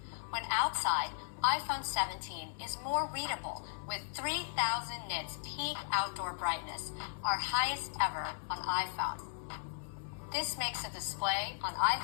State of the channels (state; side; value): silent; right; 53 dB below the other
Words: When outside, iPhone 17 is more readable with 3000 nits peak outdoor brightness, our highest ever on iPhone. This makes the display on